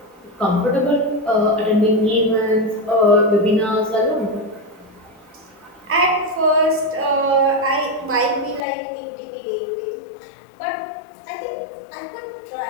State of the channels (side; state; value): right; drops out; at 8.6 s